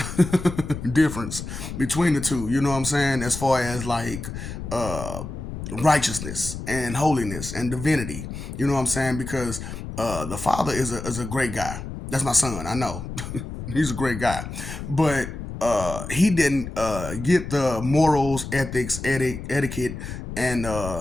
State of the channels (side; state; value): left; noise; rumble, 8 dB below the sound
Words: difference between the two. You know what I'm saying? As far as like uh, righteousness and holiness and divinity. You know what I'm saying? Because the father is a great guy. That's my son. I know. He's a great guy, but he didn't get the morals, ethics, etiquette,